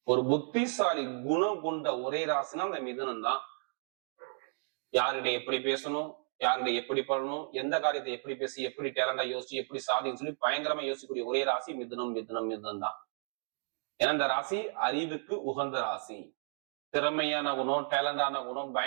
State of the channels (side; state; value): left; silent; 56 dB below the other